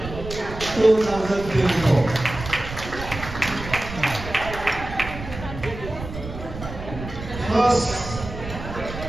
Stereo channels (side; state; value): right; noise; rumble, 10 dB below the sound